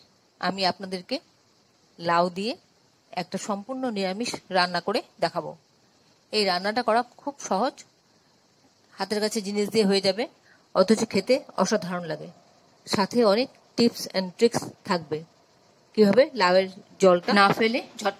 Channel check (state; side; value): identical; both; correlation 1.00